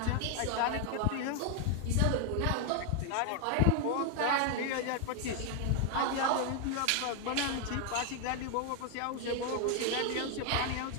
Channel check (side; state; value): both; different; correlation 0.01